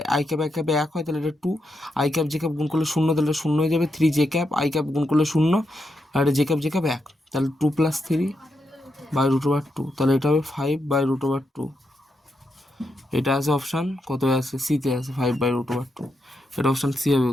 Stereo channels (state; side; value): normal; both; correlation 0.83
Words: আই ক্যাপে এক হয়, তাহলে এটা 2 আই ক্যাপ জে ক্যাপ গুণ করলে শূন্য, তাহলে শূন্য হয়ে যাবে, 3 জে ক্যাপ আই ক্যাপ গুণ করলে শূন্য, আর এটা জে ক্যাপ এক, তাহলে 2 প্লাস 3 বাই রুট ওভার 2, তাহলে এটা হবে 5 বাই রুট ওভার 2, এটা আছে অপশান কত আছে, সিতে আছে 5 বাই রুট ওভার 2, এটা অপশান সি হবে